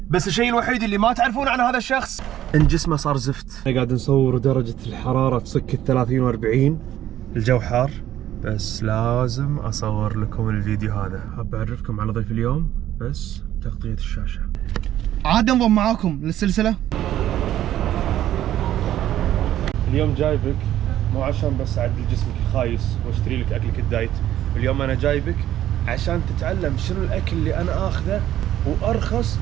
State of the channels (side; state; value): left; quieter; 12.3 dB